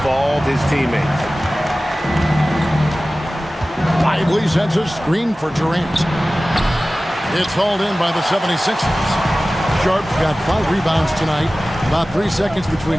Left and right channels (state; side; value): normal; both; correlation 0.97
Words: his teammates. Lively sets a screen for Durant. It's hauled in by the 76ers. Sharp's got 5 rebounds tonight. About 3 seconds